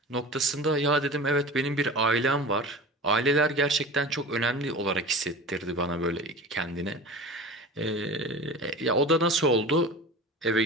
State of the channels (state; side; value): normal; both; correlation 0.34